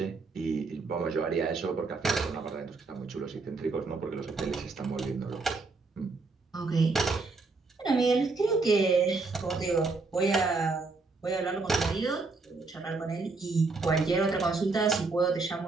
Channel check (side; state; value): left; quieter; 3.9 dB